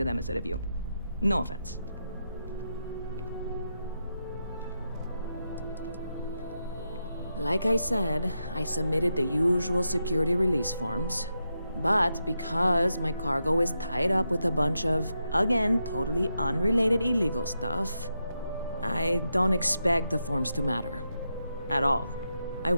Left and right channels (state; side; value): inverted; both; correlation -0.85